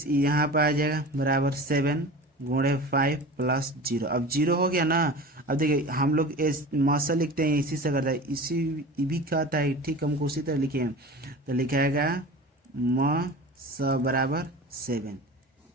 यहाँ पर आ जाएगा बराबर 7 गुणे 5 प्लस 0। अब 0 हो गया ना। अब देखिए हम लोग मौसा लिखते हैं इसी से करता है, इसी भी कहता है, ठीक हमको उसी तरह लिखे हैं, तो लिखाएगा म स बराबर 7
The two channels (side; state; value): both; normal; correlation 0.35